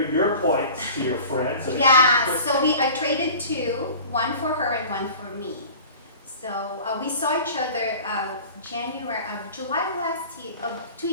points to your friend. So Yeah, so I traded two, one for her and one for me. So we saw each other July last year, 2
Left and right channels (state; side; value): inverted; both; correlation -0.41